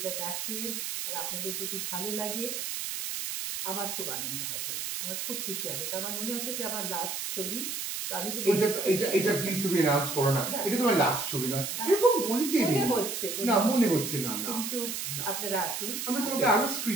দেখেন আর আপনাদের যদি ভালো লাগে, আমার খুব আনন্দ হবে, আমার খুব খুশি হবে। কারণ আমার মনে হচ্ছে যে আমার লাস্ট ছবি। তো আমি তো এটা প্লিজ তুমি অ্যানাউন্স করো না, এটা তোমার লাস্ট ছবি নয়, এরকম বলতে মনে হচ্ছে না। কিন্তু আপনারা আসুন, আমরা তোমাকে আরো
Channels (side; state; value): right; noise; hiss, 4 dB below the sound